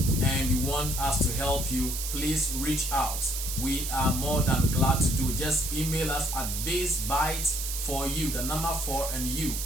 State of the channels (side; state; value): right; noise; hiss, 4 dB below the sound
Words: and you want us to help you, please reach out. We are more than glad to do it. Just email us at basebytes4you, the number 4 and you,